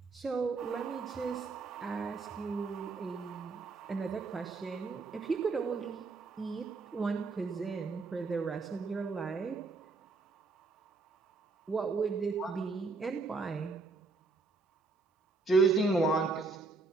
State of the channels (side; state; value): left; quieter; 4.0 dB